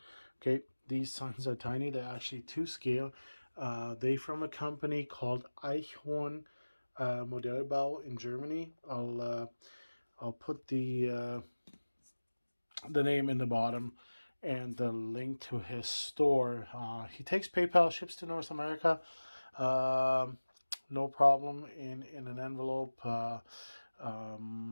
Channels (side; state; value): both; inverted; correlation -1.00